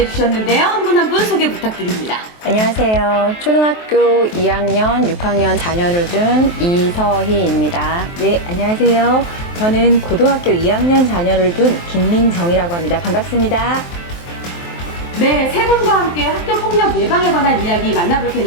주셨는데요. 한 분 한 분 소개 부탁드립니다. 안녕하세요. 초등학교 2학년, 6학년 자녀를 둔 이서희입니다. 네, 안녕하세요. 저는 고등학교 2학년 자녀를 둔 김민정이라고 합니다. 반갑습니다. 네, 세 분과 함께 학교폭력 예방에 관한 이야기 만나볼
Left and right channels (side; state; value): right; late; 23 ms